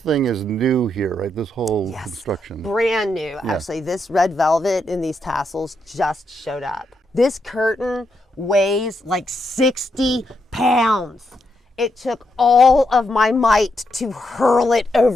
is new here, right? This whole construction. Brand new. Actually, this red velvet and these tassels just showed up. This curtain weighs like 60 pounds. It took all of my might to hurl it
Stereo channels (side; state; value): both; normal; correlation 0.81